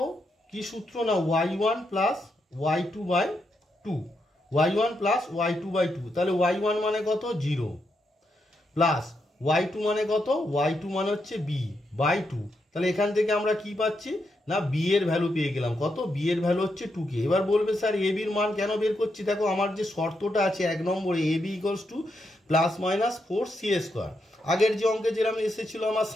কি সূত্র না y1 plus y2/2, y1 plus y2/2। তাহলে y1 মানে কত 0 প্লাস y2 মানে কত y2 মানে হচ্ছে b/2। তাহলে এখান থেকে আমরা কি পাচ্ছি না বি এর ভ্যালু পেয়ে গেলাম, কত বি এর ভ্যালু হচ্ছে 2k। এবার বলবে স্যার এ বির মান কেন বের করছি, দেখো আমার যে শর্তটা আছে 1 নম্বরে A B equals to plus minus 4c²। আগের যে অঙ্কে যেরকম এসেছিল আমার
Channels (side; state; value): both; normal; correlation 0.82